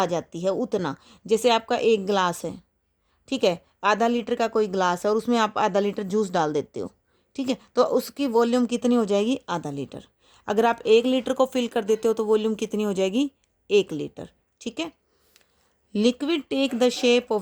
जाती है, उतना। जैसे आपका एक गिलास है, ठीक है, आधा लीटर का कोई गिलास है और उसमें आप आधा लीटर जूस डाल देते हो, ठीक है, तो उसकी वॉल्यूम कितनी हो जाएगी? आधा लीटर। अगर आप 1 लीटर को फिल कर देते हो तो वॉल्यूम कितनी हो जाएगी? 1 लीटर। ठीक है। Liquid take the shape of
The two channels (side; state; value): both; identical; correlation 1.00